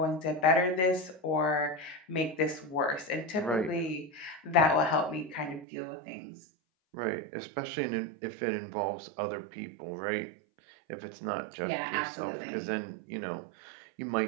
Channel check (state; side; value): drops out; left; at 5.7 s